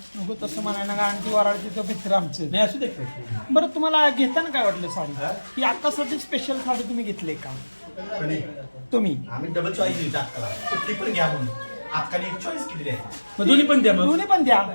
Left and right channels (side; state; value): both; inverted; correlation -1.00